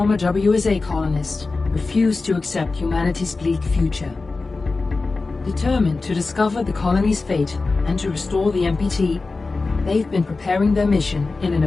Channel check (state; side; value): quieter; right; 3.8 dB